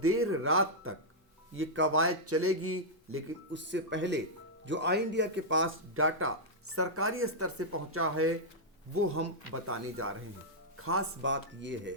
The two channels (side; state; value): both; normal; correlation -0.07